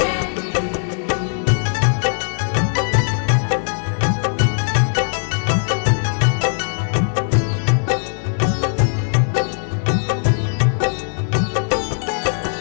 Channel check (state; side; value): silent; right; 62 dB below the other